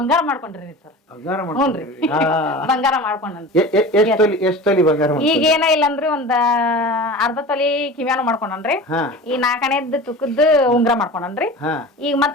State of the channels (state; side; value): normal; both; correlation 0.34